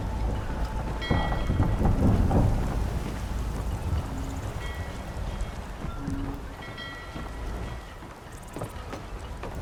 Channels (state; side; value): identical; both; correlation 1.00